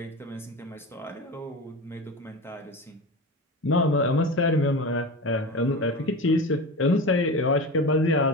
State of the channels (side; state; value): both; normal; correlation 0.27